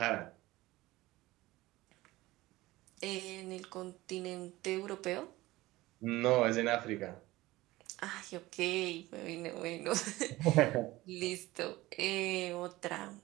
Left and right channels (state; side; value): quieter; left; 18.6 dB